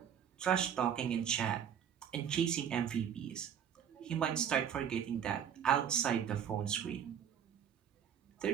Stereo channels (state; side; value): quieter; left; 8.7 dB